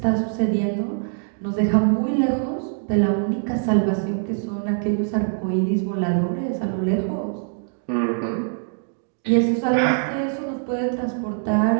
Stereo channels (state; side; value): silent; left; digital silence